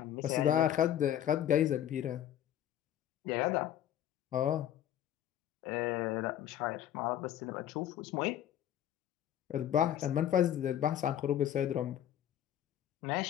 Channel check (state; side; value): quieter; right; 11.1 dB